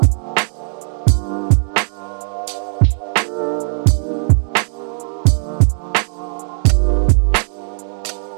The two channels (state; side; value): silent; left; 64 dB below the other